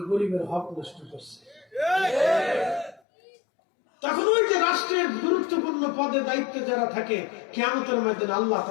গরিবের হক নষ্ট করছে। তখন ওই যে রাষ্ট্রের গুরুত্বপূর্ণ পদে দায়িত্বে যারা থাকে, কিয়ামতের ময়দানে আল্লাহ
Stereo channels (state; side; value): drops out; right; at 3.0 s